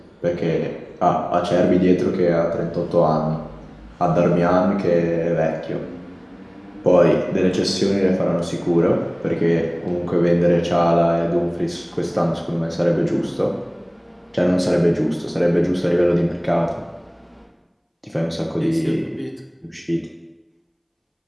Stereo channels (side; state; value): both; identical; correlation 1.00